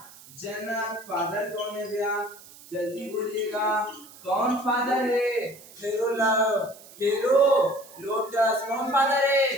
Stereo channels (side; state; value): right; noise; hiss, 21 dB below the sound